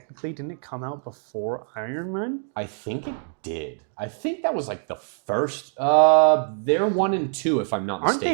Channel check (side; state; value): left; silent; digital silence